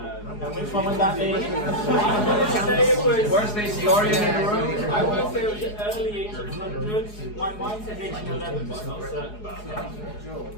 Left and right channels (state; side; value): late; right; 4.8 ms